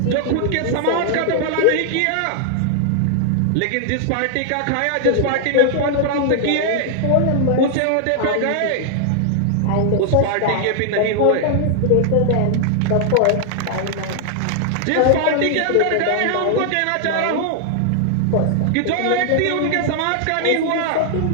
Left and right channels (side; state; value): both; different; correlation 0.00